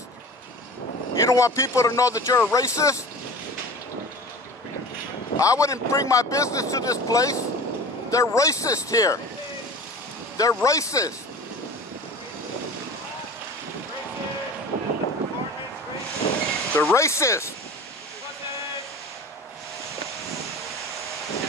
You don't want people to know that you're a racist? I wouldn't bring my business to this place. They're racist here. They're racist. They're racist.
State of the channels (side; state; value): both; normal; correlation 0.37